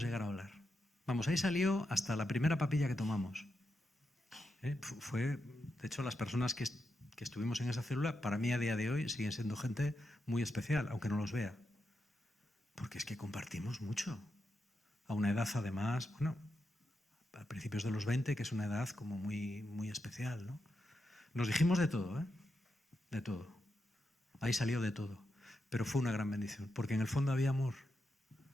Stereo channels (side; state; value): both; normal; correlation 0.86